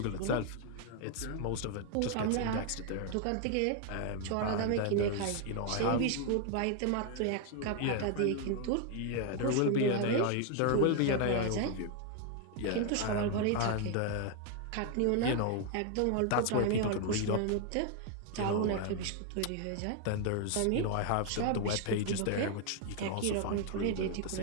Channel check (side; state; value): both; different; correlation 0.01